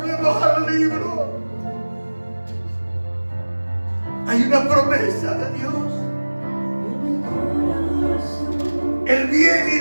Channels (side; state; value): both; inverted; correlation -1.00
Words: al libro. Hay una promesa de Dios. El bien y